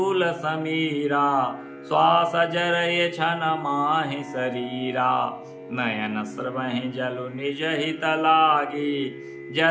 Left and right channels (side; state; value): both; identical; correlation 1.00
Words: समीरा। श्वास जरय छन माहि शरीरा, नयन स्रवहि जलु निज हित लागी।